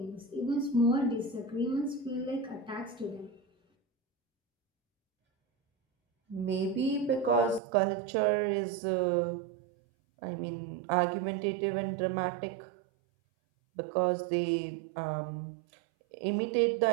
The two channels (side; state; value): left; drops out; at 7.6 s